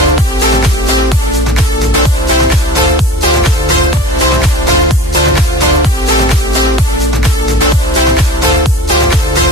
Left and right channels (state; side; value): normal; both; correlation 0.40